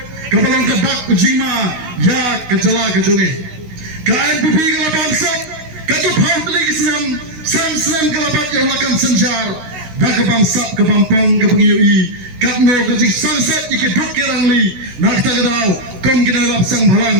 kabalong ke dak ujima ya ke jala ke jongi ke NPP kalau bangsa katu phau teli kisam sam kalau bat yang lakukan sencar dak ke bangsa ke pampang ke pengiui katno ke jing sunset ike dok kirangli nak ta gadau kom kina lap sang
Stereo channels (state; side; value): late; left; 16 ms